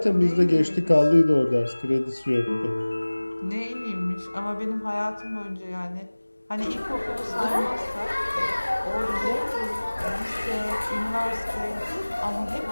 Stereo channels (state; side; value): inverted; both; correlation -1.00